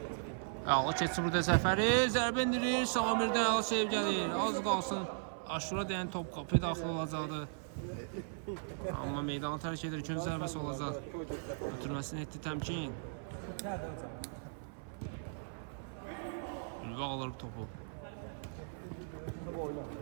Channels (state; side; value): silent; left; 53 dB below the other